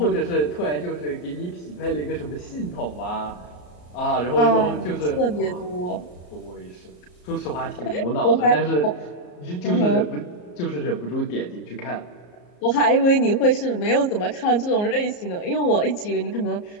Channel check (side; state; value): right; late; 34 ms